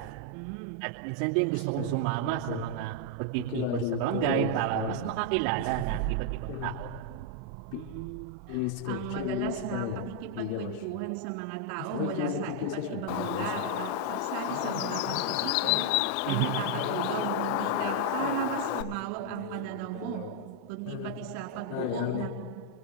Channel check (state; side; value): different; both; correlation 0.00